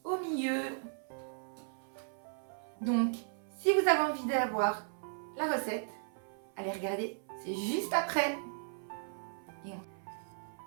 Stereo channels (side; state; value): left; silent; 54 dB below the other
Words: au milieu. Donc, si vous avez envie d'avoir la recette, allez regarder, c'est juste après.